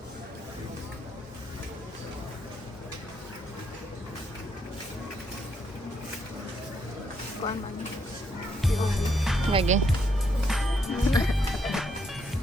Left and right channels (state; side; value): normal; both; correlation 0.76